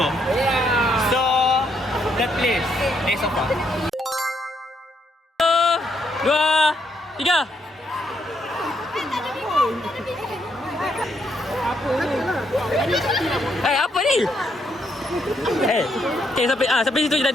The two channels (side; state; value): both; normal; correlation 0.75